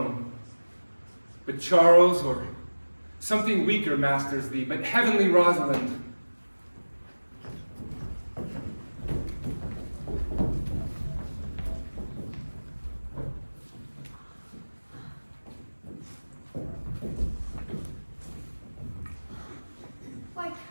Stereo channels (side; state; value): both; inverted; correlation -1.00